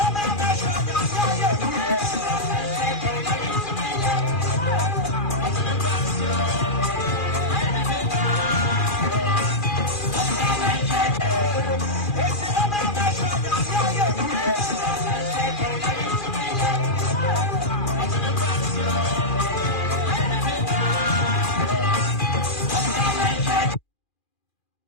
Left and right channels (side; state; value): right; late; 2.4 ms